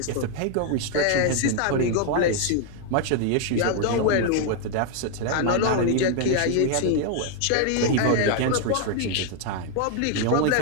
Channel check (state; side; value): different; both; correlation 0.00